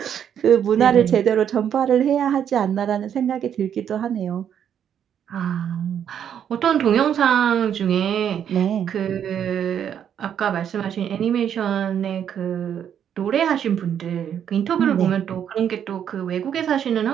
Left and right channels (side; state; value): left; quieter; 8.9 dB